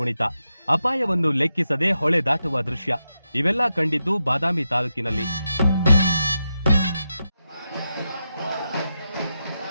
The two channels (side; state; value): both; inverted; correlation -0.88